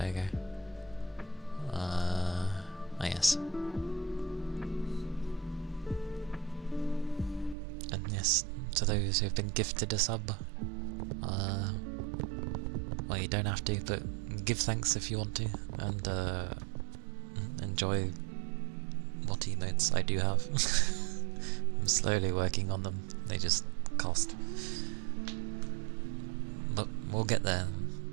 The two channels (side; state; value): left; drops out; at 7.6 s